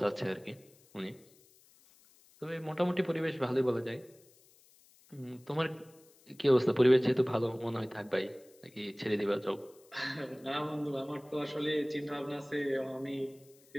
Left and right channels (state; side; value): noise; left; hiss, 28 dB below the sound